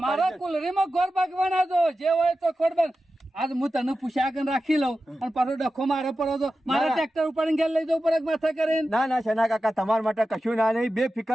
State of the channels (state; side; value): normal; both; correlation 0.93